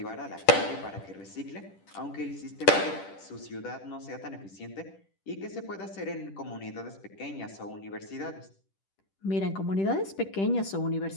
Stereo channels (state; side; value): late; right; 10 ms